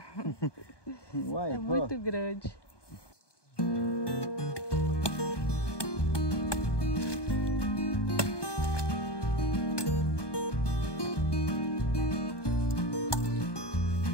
Uai, é muito grande.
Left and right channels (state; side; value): late; right; 1.2 ms